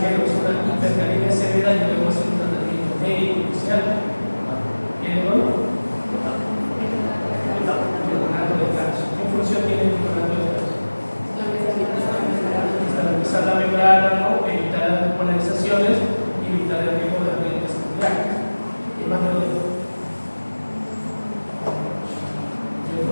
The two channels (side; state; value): both; inverted; correlation -1.00